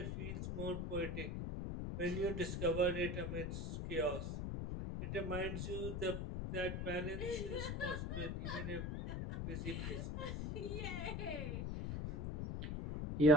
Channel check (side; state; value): left; noise; rumble, 2 dB below the sound